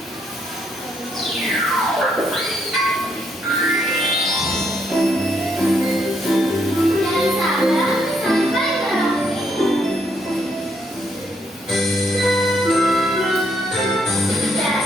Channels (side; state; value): both; normal; correlation 0.73